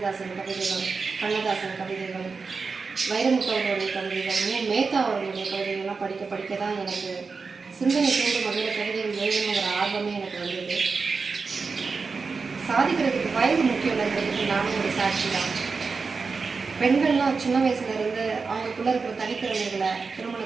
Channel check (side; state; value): left; quieter; 4.7 dB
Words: கவிதைகள், கண்ணதாசன் கவிதைகள், வைரமுத்து அவர்களுடைய கவிதைகள், மேத்தா அவர்களுடைய கவிதைகள்லாம் படிக்க படிக்க தான் எனக்கு சிந்தனை தூண்டும் வகையில் கவிதைகள் எழுதணுங்கிற ஆர்வமே எனக்கு வந்தது. சாதிக்கிறதுக்கு வயது முக்கியம் இல்லைங்கிறதுக்கு நானும் ஒரு சாட்சி தான். பெண்கள்லாம் சின்ன வயசுலேருந்து அவங்களுக்குள்ளே இருக்கிற தனித்திறமைகளை